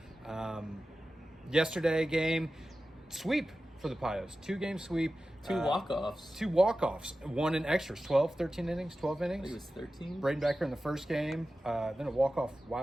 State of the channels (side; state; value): both; normal; correlation 0.94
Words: Yesterday game, sweep for the Padres. 2-game sweep. Two walk-offs. 2 walk-offs. One in extras. 13 innings, 12 innings. I think it was 13. Braden Becker in the first game. Then a walk-off